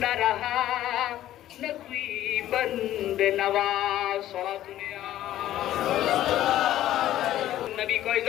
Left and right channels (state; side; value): quieter; right; 13.2 dB